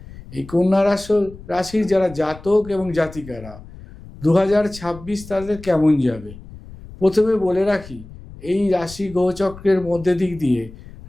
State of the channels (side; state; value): left; noise; rumble, 17 dB below the sound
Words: এই কন্যা রাশির যারা জাতক এবং জাতিকারা 2026 তাদের কেমন যাবে, প্রথমে বলে রাখি, এই রাশি গ্রহচক্রের মধ্যে দিক দিয়ে